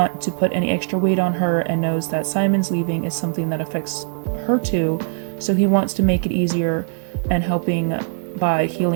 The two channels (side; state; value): left; silent; 65 dB below the other